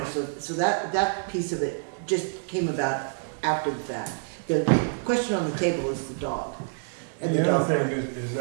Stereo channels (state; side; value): silent; left; digital silence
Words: know, so that piece of it just came about after the fact. The question on the table is the dog. And the other thing is